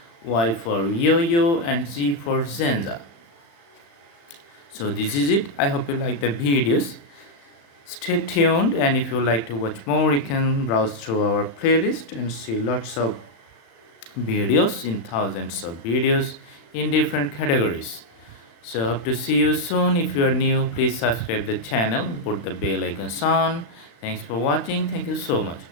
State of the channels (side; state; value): right; late; 35 ms